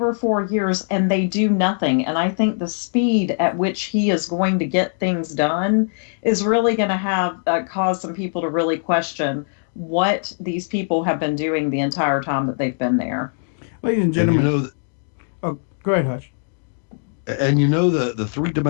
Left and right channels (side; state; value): right; silent; digital silence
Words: or 4 years, and they do nothing. And I think the speed at which he is going to get things done is really going to have cause some people to really question what these people have been doing the entire time that they've been there. Ladies and gentlemen, go ahead, Hutch. And the